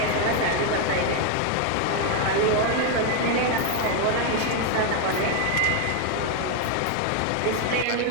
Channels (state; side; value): different; both; correlation 0.01